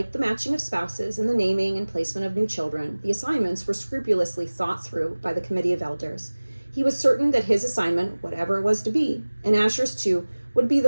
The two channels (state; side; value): inverted; both; correlation -1.00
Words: the matching of spouses and the naming and placement of new children, the assignments were scrupulously thought through by the Committee of Elders. He was certain that his assignment, whatever it was to be, and Asher's too, would be